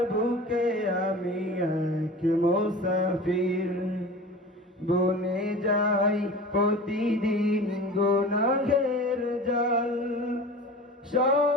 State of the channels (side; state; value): both; normal; correlation 0.37